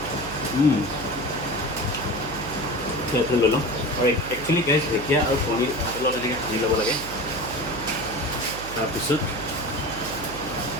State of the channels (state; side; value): noise; right; hum, 11 dB below the sound